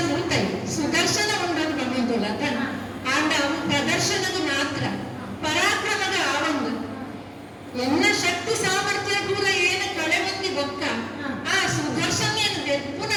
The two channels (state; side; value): identical; both; correlation 1.00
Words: ಸುಲ್ತೈ ಸುದರ್ಶನ ಉಂಡದು ನಮ್ಮದುಲ್ಲ ಆಂಡ ಅವು ಪ್ರದರ್ಶನದ ಮಾತ್ರ ಪರಾಕ್ರಮದ ಆವಂದು ಎನ್ನ ಶಕ್ತಿ ಸಾಮರ್ಥ್ಯ ಕೂಡ ಏನು ಕಳೆ ಬಂದಿ ಬೊಕ್ಕ ಆ ಸುದರ್ಶನ ಏನು ಬೆಪ್ಪುನ